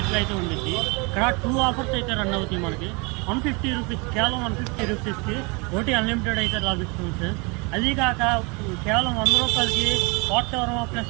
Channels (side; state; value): left; quieter; 29.9 dB